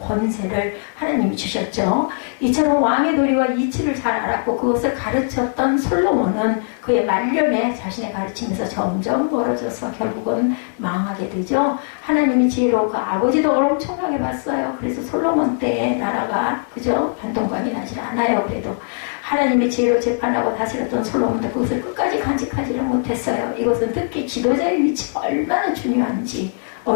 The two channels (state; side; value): silent; right; digital silence